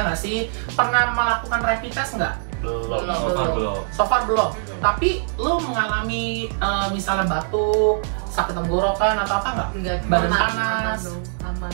nggak sih? Pernah melakukan rapid test nggak? Belum. So far belum. Tapi lo mengalami misalnya batuk, sakit tenggorokan atau apa nggak? Enggak, Badan aman, panas? aman.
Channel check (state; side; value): silent; left; digital silence